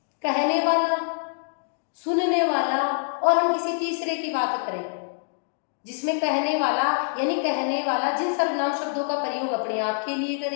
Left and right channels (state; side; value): silent; right; digital silence